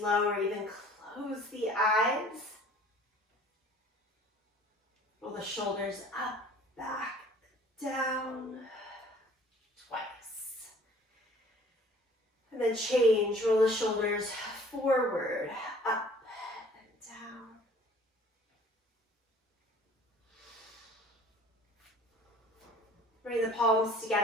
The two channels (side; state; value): both; normal; correlation 0.51